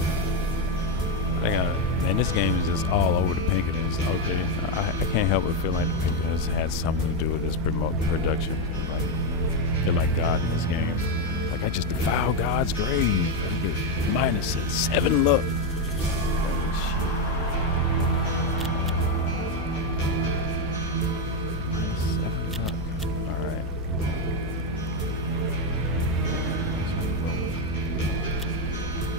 Man, this game is just all over the Pinkertons. Okay, I can't help but feel like the Pinkertons had something to do with this production. Like, they're like God in this game. Like, I just defiled God's grave. I get -7 luck.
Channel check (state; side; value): normal; both; correlation 0.05